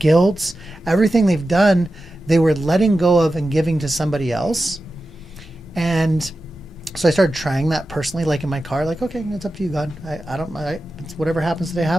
everything they've done, they were letting go of and giving to somebody else. And so I started trying that personally, like in my car, like, okay, it's up to you, God. It's whatever happens today,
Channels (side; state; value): both; normal; correlation 0.92